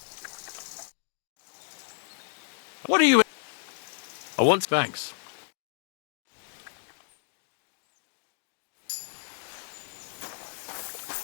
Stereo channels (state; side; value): silent; right; digital silence